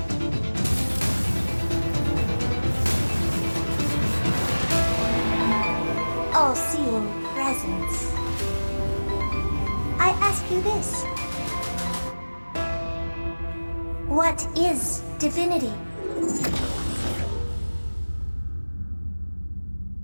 all-seeing presence, I ask you this. What is divinity?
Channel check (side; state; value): both; inverted; correlation -1.00